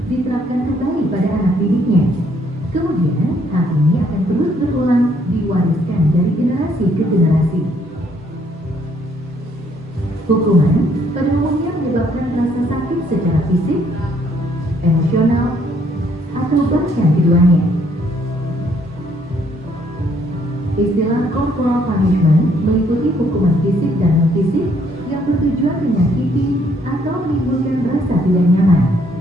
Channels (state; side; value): normal; both; correlation 0.67